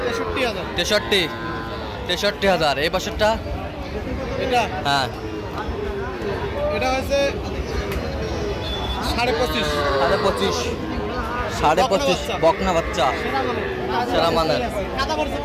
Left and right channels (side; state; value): both; identical; correlation 1.00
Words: 63,000। 63,000। এই বাসারটা এটা, হ্যাঁ, এটা হচ্ছে 25,500। 25,500। 25,500 বকনা বাচ্চা, সেরা মানের।